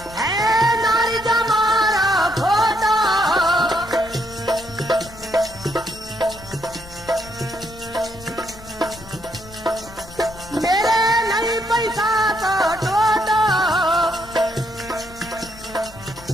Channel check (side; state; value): left; noise; rumble, 19 dB below the sound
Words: है नार जमारो खोटो। मेरे नहीं पैसा तो टोटो।